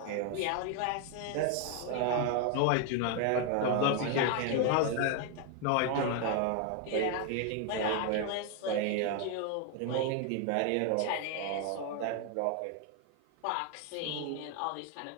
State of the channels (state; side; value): different; both; correlation 0.01